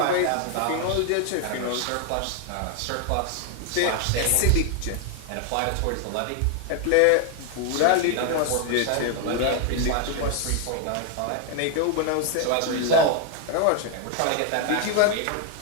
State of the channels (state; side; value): different; both; correlation 0.00